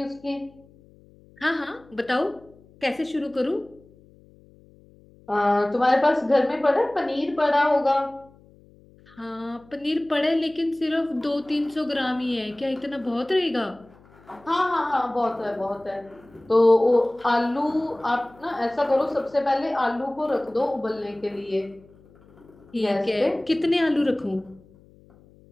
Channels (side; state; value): left; noise; hum, 27 dB below the sound